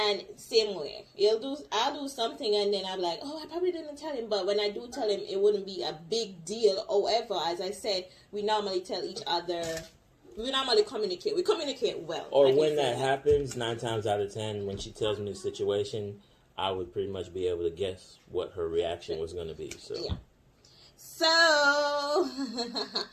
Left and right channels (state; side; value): identical; both; correlation 1.00